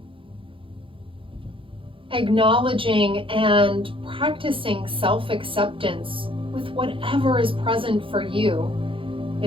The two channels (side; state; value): left; late; 0.25 ms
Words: Acknowledging and practicing self-acceptance with whatever is present for you.